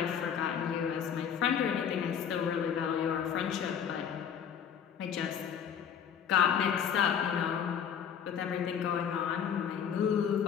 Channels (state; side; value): quieter; right; 8.1 dB